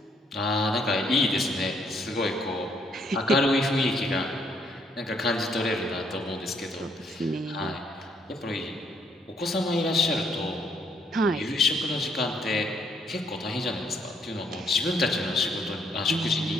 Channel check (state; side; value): normal; both; correlation 0.70